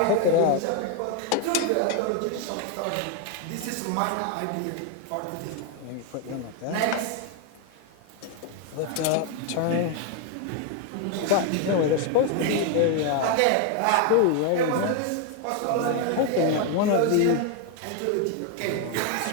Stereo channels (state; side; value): different; both; correlation 0.01